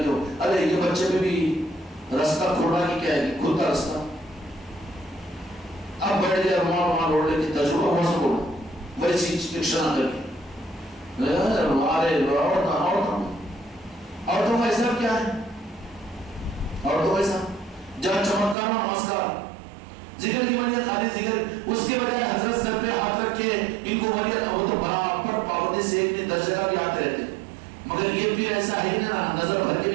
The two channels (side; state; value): left; drops out; at 18.6 s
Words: کے, ارے یہ بچے پہ بھی راستہ کھوڑا کی کیا ہے, کھلتا راستہ. اب بیٹھ گیا رومان روڑنے کی تجربہ ہوا سب بولا ویسی رکشا نہ کر کے, اور تو ایسا کیا ہے, اور تو ایسا جہاں چمتکار اور نمسکار ذکر کی بجائے خالی ذکر, اس کے بجائے حضرت سر پہ ہاتھ رکھ کے ان کو بڑھیا, وہ تو برابر پابندی سے ایک درجے کا بھی آتے رہتے. مگر یہ پیر ایسا ہے نا, نظر بھر کے